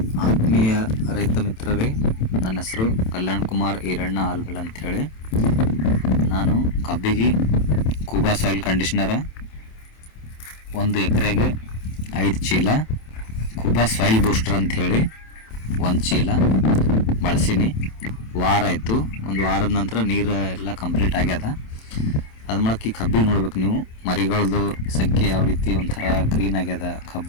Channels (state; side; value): late; right; 27 ms